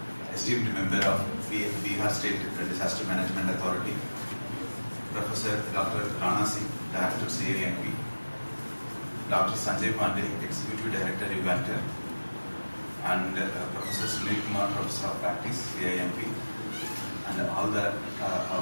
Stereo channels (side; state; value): both; inverted; correlation -1.00